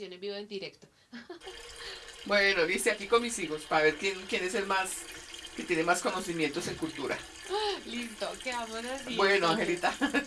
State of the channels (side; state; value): both; identical; correlation 1.00